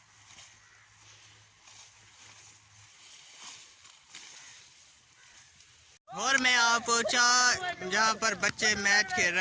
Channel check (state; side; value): identical; both; correlation 1.00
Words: और मैं आ पहुँचा जहाँ पर बच्चे मैच खेल